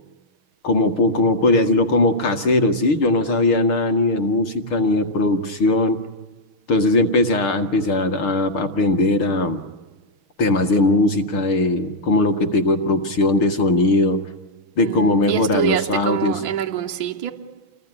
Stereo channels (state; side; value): late; right; 6.7 ms